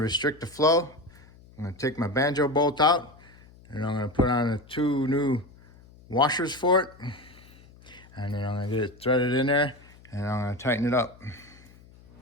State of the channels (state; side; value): noise; left; hum, 24 dB below the sound